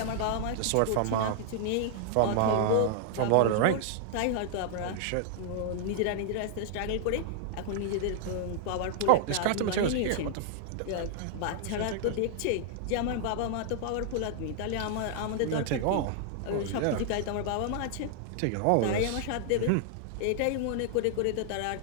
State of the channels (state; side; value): different; both; correlation -0.01